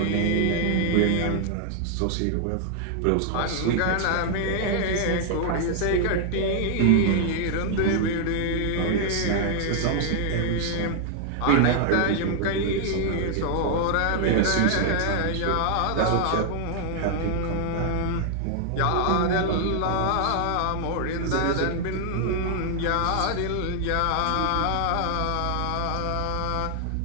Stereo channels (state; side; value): different; both; correlation 0.00